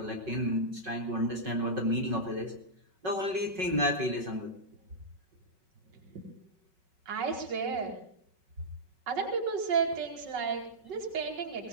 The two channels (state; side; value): late; left; 5.4 ms